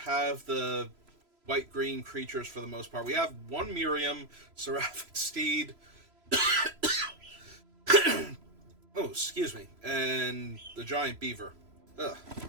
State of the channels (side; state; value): left; late; 3.0 ms